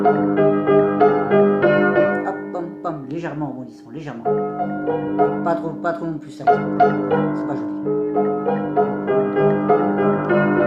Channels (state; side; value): identical; both; correlation 1.00